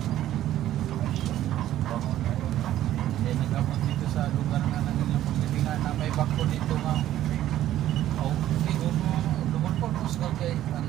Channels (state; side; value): quieter; left; 12.9 dB